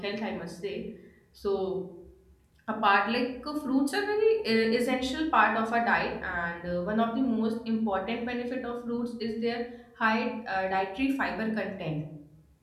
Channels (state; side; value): identical; both; correlation 1.00